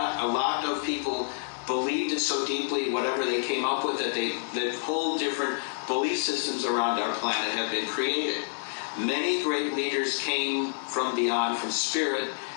A lot of people believed it so deeply, whatever they came up with, that whole different belief systems around our planet have been created. Many great leaders came from beyond, from spirit,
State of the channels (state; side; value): silent; right; 59 dB below the other